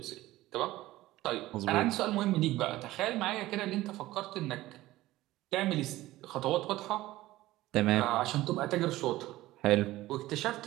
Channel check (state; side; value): quieter; left; 16.8 dB